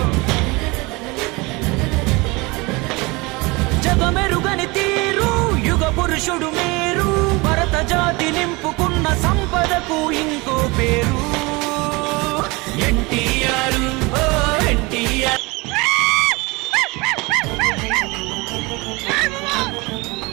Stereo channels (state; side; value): quieter; left; 25.0 dB